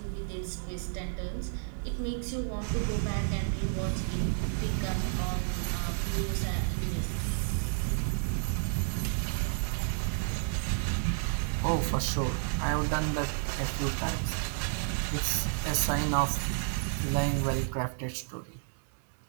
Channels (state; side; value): silent; left; 57 dB below the other